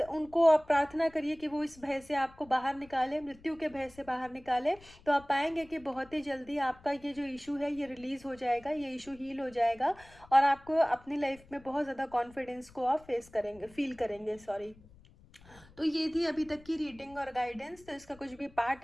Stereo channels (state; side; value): noise; left; rumble, 24 dB below the sound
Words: उनको आप प्रार्थना करिए कि वो इस भय से आपको बाहर निकाले, मृत्यु के भय से बाहर निकाले। तो आप पाएंगे कि बहुत ही जल्दी आपका ये जो इशू है ये रिलीज हो जाएगा, ये इशू हील हो जाएगा, और आपको अपनी लाइफ में बहुत ज़्यादा कॉन्फिडेंस को आप फील करेंगे। सॉरी। तो ये थी अभी तक की रीडिंग और गाइडेंस। तो इसका कुछ भी पार्ट